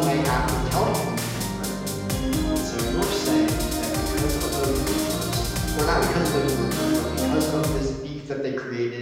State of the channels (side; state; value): both; identical; correlation 1.00